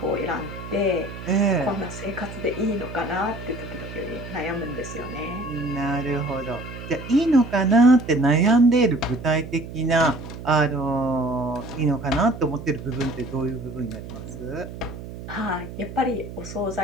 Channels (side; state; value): right; noise; hum, 11 dB below the sound